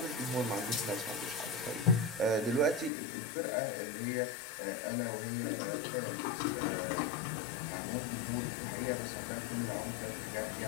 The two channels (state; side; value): drops out; right; at 2.9 s